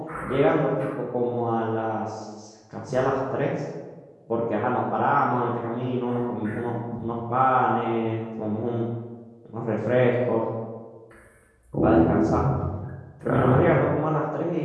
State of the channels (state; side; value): identical; both; correlation 1.00